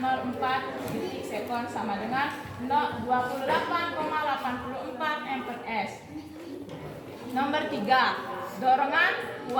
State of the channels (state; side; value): identical; both; correlation 1.00